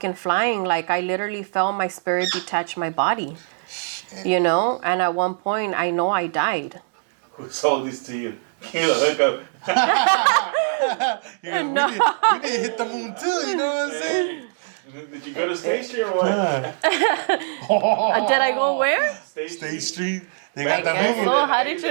flying. Like, I literally felt my spirit detach my body. Shit. You know? And at one point, I know I died. Who sold this to you? Kill a hookup. We didn't hit the moon too, you know what I'm saying? Did you go to State Street or what? Did I go where? State Street. They I got the guess Hoover. so. How did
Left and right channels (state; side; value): silent; left; digital silence